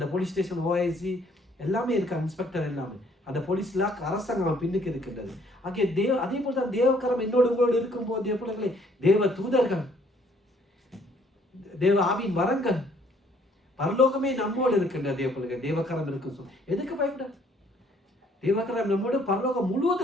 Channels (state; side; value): normal; both; correlation 0.63